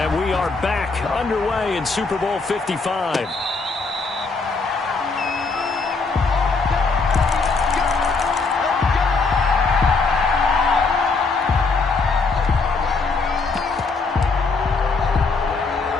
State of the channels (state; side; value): quieter; right; 4.1 dB